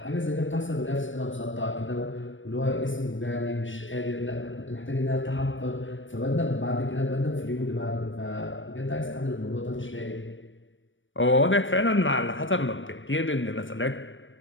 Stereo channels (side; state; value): right; late; 0.56 ms